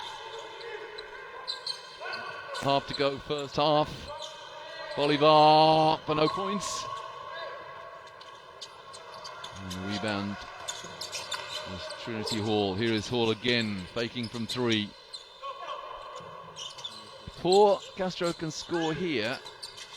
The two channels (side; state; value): both; identical; correlation 1.00